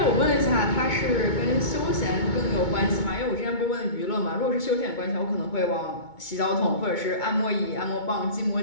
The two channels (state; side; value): late; right; 2.2 ms